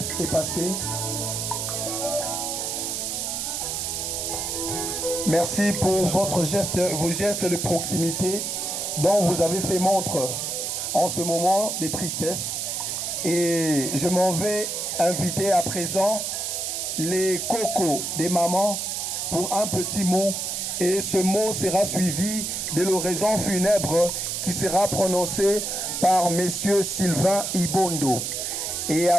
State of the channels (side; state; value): right; noise; hiss, 2 dB below the sound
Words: est passé. Merci pour vos gestes de proximité dont vous avez fait montre en ce moment de tristesse. Et je m'en vais inviter à présent les cocos des mamans pour un petit mot. Et ce mot sera suivi de l'oraison funèbre qui sera prononcée par messieurs Sylvain Ibondo. Et